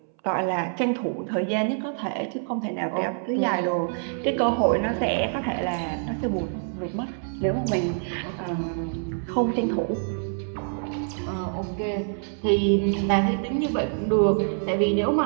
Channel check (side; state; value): left; silent; 61 dB below the other